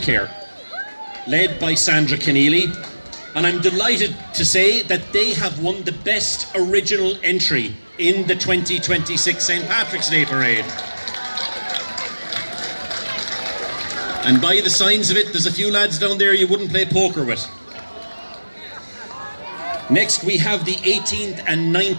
led by Sandra Keneally, and I'm delighted to say that they have won the best original entry in the 2026 St. Patrick's Day Parade. And by the signs of it, there's a few lads down there you wouldn't play poker with. Next, we have the 18th and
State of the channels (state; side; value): inverted; both; correlation -1.00